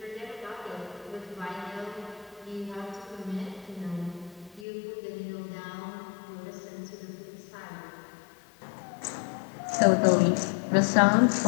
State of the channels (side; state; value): right; drops out; at 4.7 s